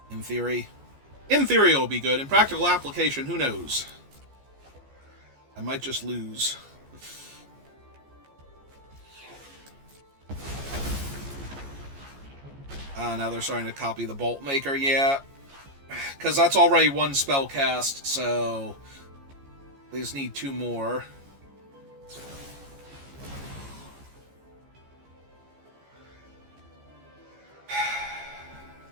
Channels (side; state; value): left; late; 14 ms